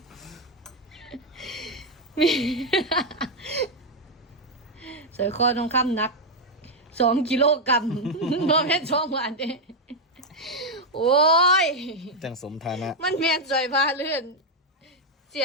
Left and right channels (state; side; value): normal; both; correlation 0.02